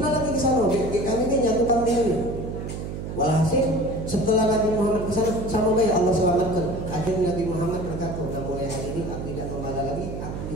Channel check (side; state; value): right; noise; hum, 6 dB below the sound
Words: lagi ke sana. Kami ini jatuh kambing ini. Walhasil setelah Nabi Muhammad ke sana sama baik Allah selamatkan. Akhirnya Nabi Muhammad berkata, "Sudah mulai hari ini aku tidak membala lagi, aku